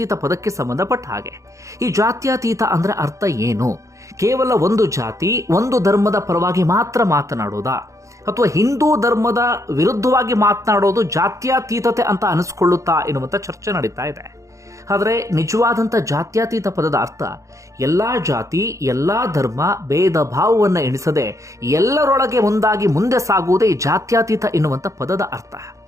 ಪದಕ್ಕೆ ಸಂಬಂಧಪಟ್ಟ ಹಾಗೆ. ಈ ಜಾತ್ಯತೀತ ಅಂದ್ರೆ ಅರ್ಥ ಏನು? ಕೇವಲ ಒಂದು ಜಾತಿ ಒಂದು ಧರ್ಮದ ಪರವಾಗಿ ಮಾತ್ರ ಮಾತನಾಡೋದಾ, ಅಥವಾ ಹಿಂದೂ ಧರ್ಮದ ವಿರುದ್ಧವಾಗಿ ಮಾತನಾಡೋದು ಜಾತ್ಯತೀತತೆ ಅಂತ ಅನಿಸ್ಕೊಳ್ಳುತ್ತಾ ಎನ್ನುವಂಥ ಚರ್ಚೆ ನಡೀತಾ ಇದೆ. ಆದರೆ ನಿಜವಾದಂಥ ಜಾತ್ಯತೀತ ಪದದ ಅರ್ಥ ಎಲ್ಲ ಜಾತಿ ಎಲ್ಲ ಧರ್ಮ ಭೇದ ಭಾವವನ್ನು ಎಣಿಸದೆ ಎಲ್ಲರೊಳಗೆ ಒಂದಾಗಿ ಮುಂದೆ ಸಾಗುವುದೇ ಜಾತ್ಯತೀತ ಎನ್ನುವಂಥ ಪದದ ಅರ್ಥ.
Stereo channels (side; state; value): left; late; 0.15 ms